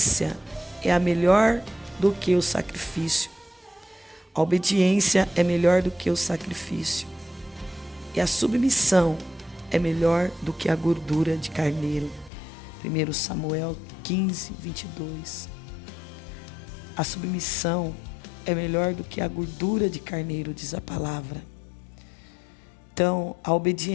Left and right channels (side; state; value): right; drops out; at 12.3 s